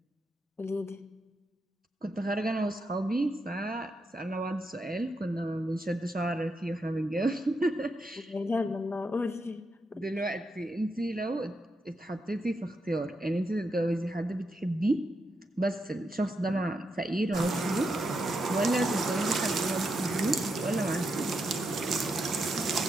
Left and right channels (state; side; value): normal; both; correlation 0.83